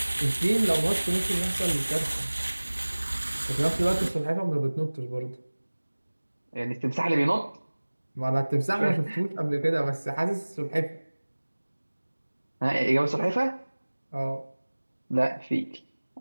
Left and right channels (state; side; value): inverted; both; correlation -1.00